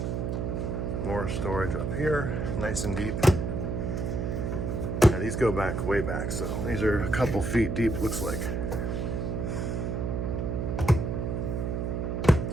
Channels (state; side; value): noise; right; hum, 1 dB below the sound